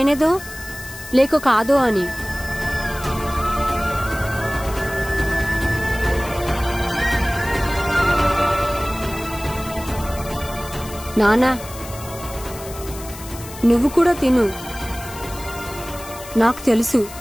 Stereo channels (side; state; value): left; noise; hiss, 14 dB below the sound